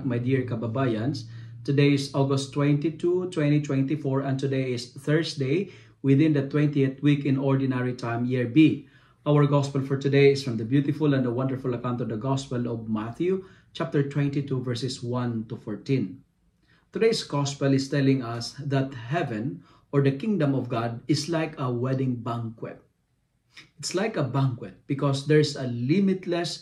my dear kababayans. Today is August 22, 2024, and today is Thursday within the 20th week in Ordinary Time, Year B. Our Gospel for today is from the beautiful and the wonderful account of the Gospel of Matthew, chapter 22, verses 1 to 14. Today's Gospel is telling us that heaven, or the kingdom of God, is like a wedding banquet. It's like a banquet because there's a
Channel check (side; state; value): both; identical; correlation 1.00